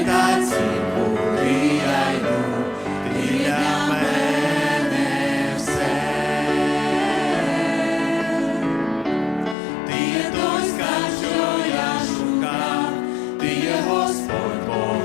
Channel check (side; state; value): right; drops out; at 9.6 s